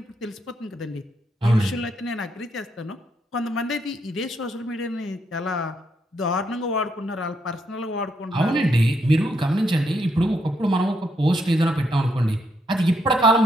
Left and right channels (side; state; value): both; normal; correlation 0.77